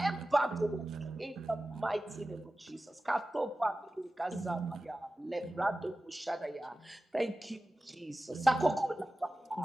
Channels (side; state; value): both; normal; correlation 0.95